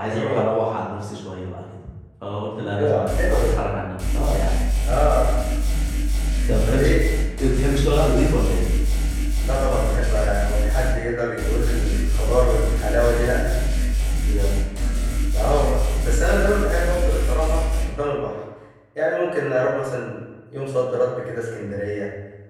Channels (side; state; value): both; identical; correlation 1.00